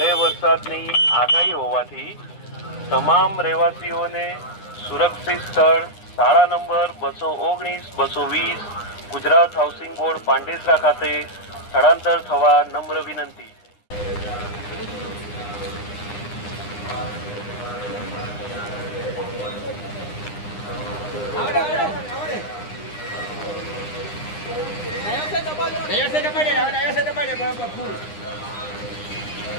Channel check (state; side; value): late; right; 9.8 ms